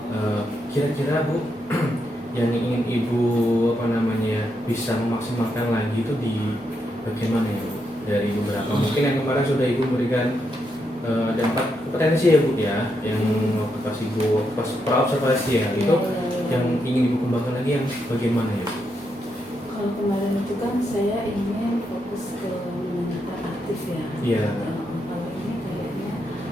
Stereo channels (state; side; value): normal; both; correlation 0.81